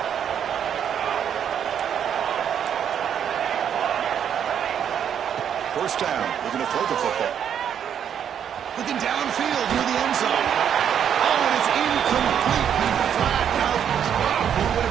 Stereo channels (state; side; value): quieter; left; 8.7 dB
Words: First down, they're going to throw the football. Looking downfield near the end zone. Oh, and it's incomplete. Flat out drop. It would have